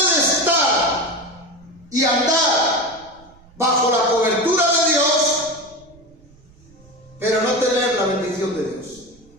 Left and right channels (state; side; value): noise; right; rumble, 27 dB below the sound